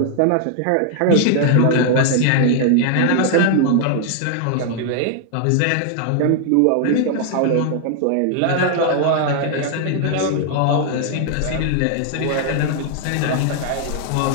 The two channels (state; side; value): different; both; correlation 0.00